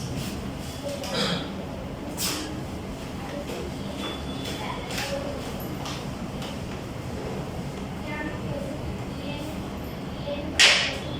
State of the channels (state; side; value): identical; both; correlation 1.00